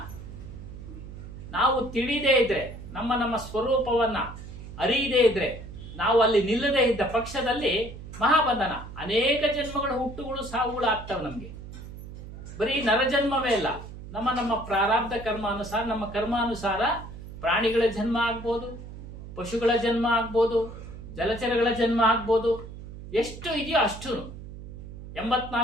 ನಾವು ತಿಳಿದೇ ಇದ್ರೆ, ನಮ್ಮ ಸ್ವರೂಪವನ್ನ ಅರಿಯದೇ ಇದ್ರೆ, ನಾವು ಅಲ್ಲಿ ನಿಲ್ಲದೇ ಇದ್ದ ಪಕ್ಷದಲ್ಲಿ ಮಹಾಬಂಧನ. ಅನೇಕ ಜನ್ಮಗಳ ಹುಟ್ಟುಗಳು ಸಾವುಗಳು ಆಗ್ತವೆ ನಮ್ಗೆ. ಬರೀ ನರಜನ್ಮವೇ ಇಲ್ಲ, ನಮ್ಮ ಪ್ರಾರಬ್ಧ ಕರ್ಮಾನುಸಾರ, ನಮ್ಮ ಕರ್ಮಾನುಸಾರ ಪ್ರಾಣಿಗಳ ಜನ್ಮ ಆಗ್ಬೋದು, ಪಶುಗಳ ಜನ್ಮ ಆಗ್ಬೋದು, ಜಲಚರಗಳ ಜನ್ಮ ಆಗ್ಬೋದು. ಎಷ್ಟು ಇದೆಯೋ ಅಷ್ಟು.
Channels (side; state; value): right; noise; hum, 13 dB below the sound